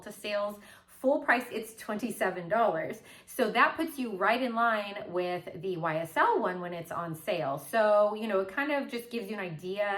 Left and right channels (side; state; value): both; identical; correlation 1.00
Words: sales. Full price, it's $27. So that puts you right in line with the YSL one when it's on sale. So, it kind of just gives you an